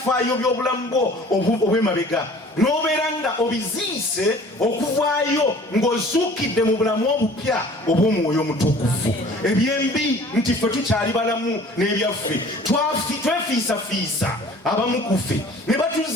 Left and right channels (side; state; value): both; normal; correlation 0.49